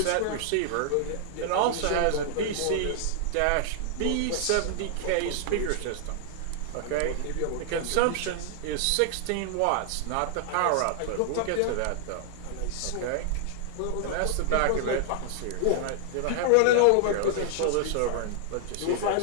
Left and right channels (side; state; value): both; different; correlation 0.00